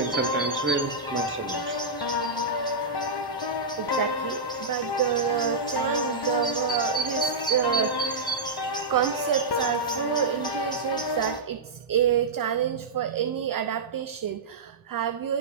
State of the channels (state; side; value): quieter; left; 3.5 dB